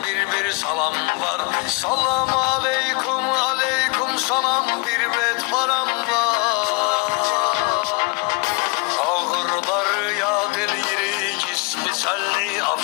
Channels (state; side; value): quieter; right; 27.8 dB